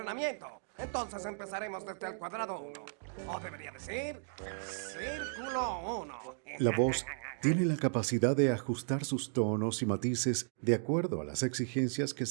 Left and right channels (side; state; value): left; silent; digital silence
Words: Entonces empezaremos desde el cuadrado 1. O debería decir, círculo 1. La voz tiene la capacidad de ajustar sus tonos y matices de acuerdo a las exigencias que